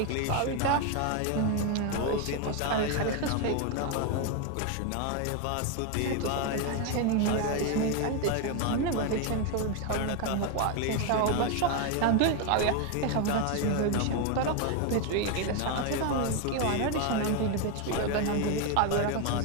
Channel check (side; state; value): both; different; correlation 0.01